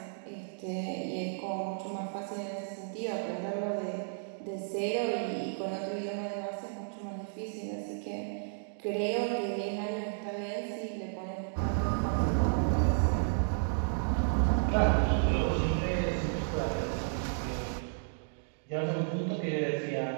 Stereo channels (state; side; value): silent; left; digital silence